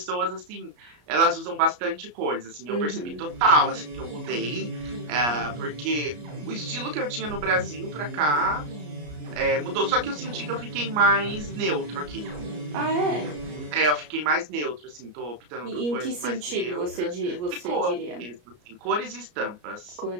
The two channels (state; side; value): late; left; 33 ms